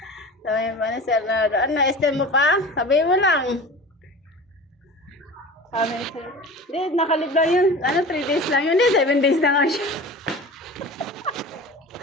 Sabi mo na, Sir Nardo, ano, extend mo pa? Sabi mo lang. Sabi siya, hindi, nakalib lang yun. Ano, 3 days lang yun. Hindi, 7 days na nga siya.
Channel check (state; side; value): normal; both; correlation 0.36